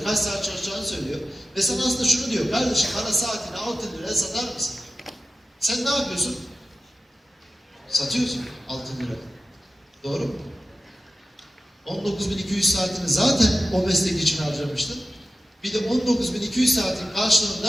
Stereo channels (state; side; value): normal; both; correlation 0.94